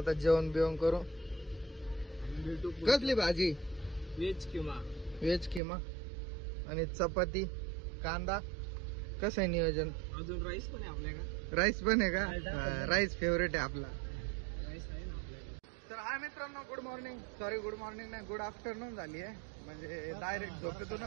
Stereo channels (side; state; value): left; drops out; at 5.6 s